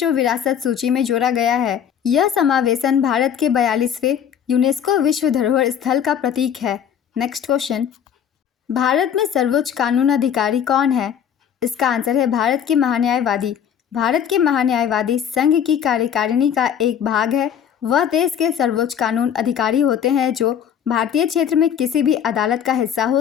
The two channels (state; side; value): quieter; right; 8.8 dB